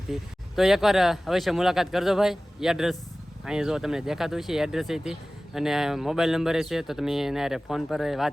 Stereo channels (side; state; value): both; normal; correlation 0.97